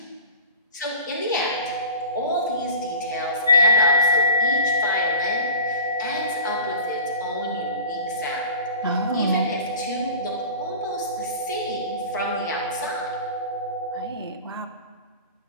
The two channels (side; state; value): both; inverted; correlation -0.38